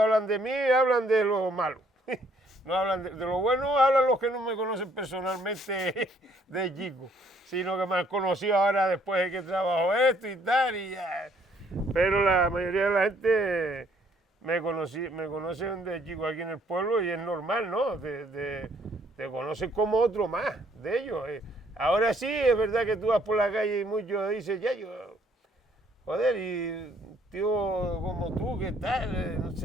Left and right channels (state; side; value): normal; both; correlation 0.65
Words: hablan de mí, hablan de lo malo. No hablan de lo bueno, hablan los que no me conocen personalmente de chico, sino que me han conocido ahora después de que trabajo esto y tal, y ya. Pero la mayoría de la gente me conocen de chico aquí en el pueblo y es normal, ¿no? Te conocen como otro más de ellos. Ahora sí, es verdad que tú vas por la calle y muchos dicen, ya yo, joder, y tío como tú, ¿qué tal? No